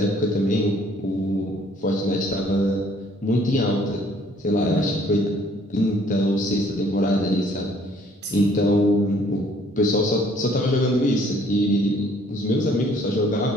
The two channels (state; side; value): normal; both; correlation 0.61